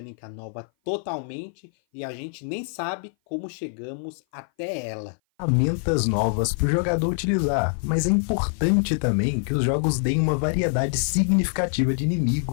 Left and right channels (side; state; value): right; silent; 57 dB below the other